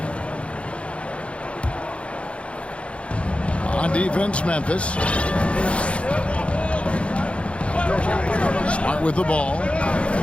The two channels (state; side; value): late; right; 0.060 ms